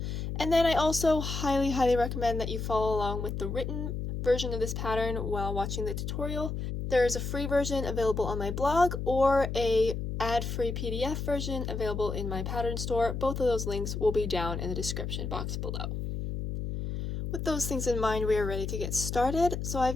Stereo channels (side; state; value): left; noise; hum, 4 dB below the sound